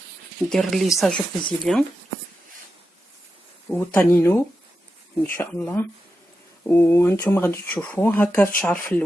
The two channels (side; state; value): both; normal; correlation 0.89